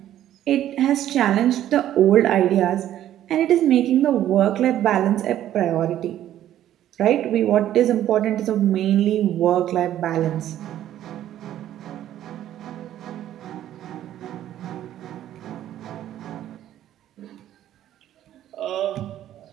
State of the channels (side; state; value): left; quieter; 12.0 dB